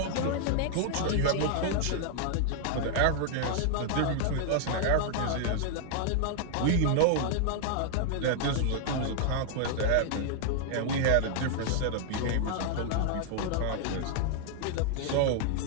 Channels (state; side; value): different; both; correlation 0.00